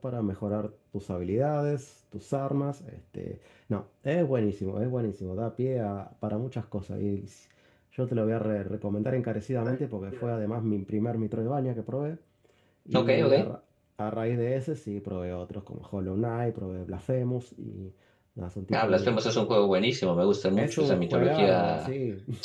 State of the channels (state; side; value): identical; both; correlation 1.00